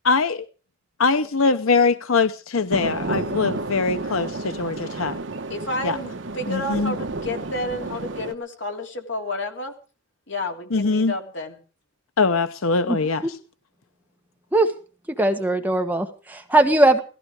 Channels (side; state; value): both; normal; correlation 0.12